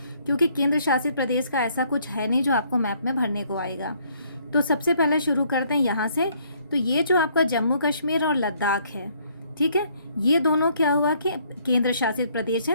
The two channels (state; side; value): inverted; both; correlation -0.66